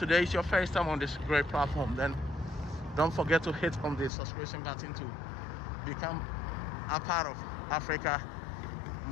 is your first time on this great platform, then don't forget to hit on the subscription button to become a part of Africa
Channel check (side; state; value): right; drops out; at 4.1 s